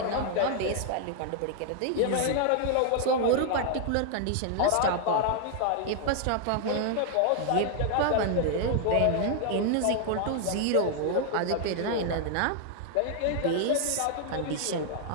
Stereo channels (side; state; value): both; different; correlation 0.00